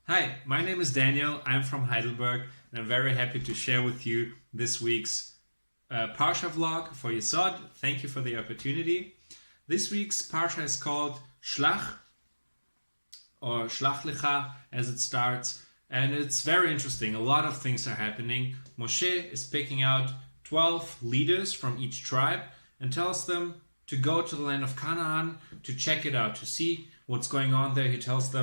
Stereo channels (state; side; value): inverted; both; correlation -1.00